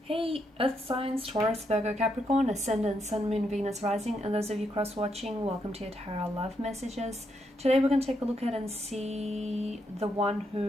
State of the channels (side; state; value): both; normal; correlation 0.79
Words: Hey, Earth signs, Taurus, Virgo, Capricorn, Ascendant, Sun, Moon, Venus, Rising, and those of you cross-watching, welcome to your Tarot Love Messages. Today we're going to take a look at and see the one